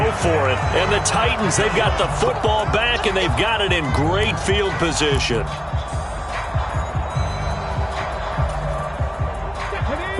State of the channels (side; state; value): both; identical; correlation 1.00